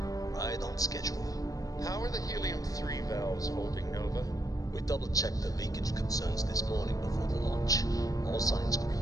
Right on schedule. How are the helium-3 valves holding, Nova? We double-checked the leakage concerns this morning before the launch. All signs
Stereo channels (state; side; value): late; right; 0.17 ms